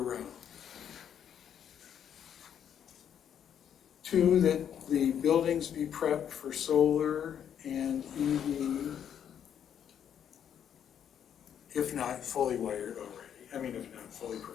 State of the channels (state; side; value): quieter; right; 9.0 dB